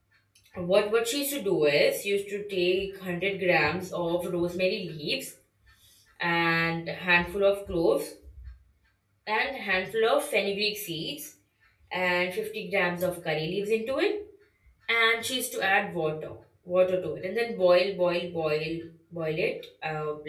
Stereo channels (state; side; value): identical; both; correlation 1.00